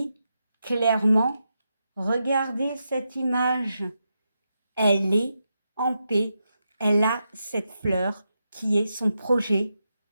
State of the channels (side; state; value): both; inverted; correlation -0.86